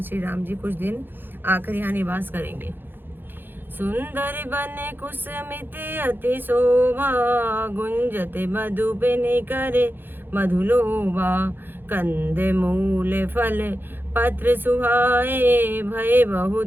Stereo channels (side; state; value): left; late; 0.099 ms